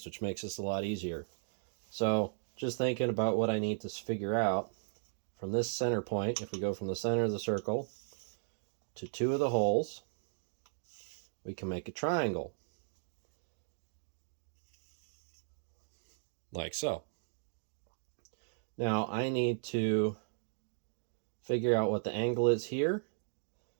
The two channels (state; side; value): silent; left; digital silence